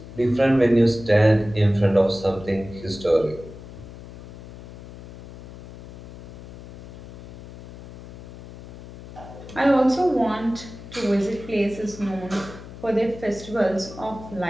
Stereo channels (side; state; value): left; noise; hum, 15 dB below the sound